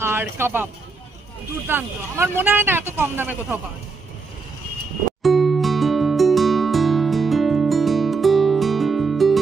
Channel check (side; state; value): left; quieter; 4.4 dB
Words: আর কাবাব দুর্দান্ত। আমার মনে হয় না এত কম দামে কোথাও পাওয়া যায়।